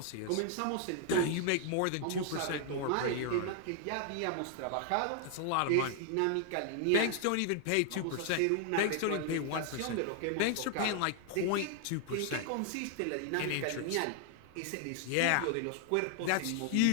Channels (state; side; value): different; both; correlation 0.00